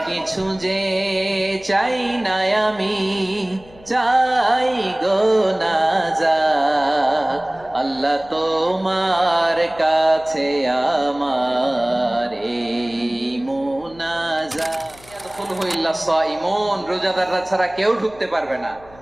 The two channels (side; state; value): left; noise; hum, 24 dB below the sound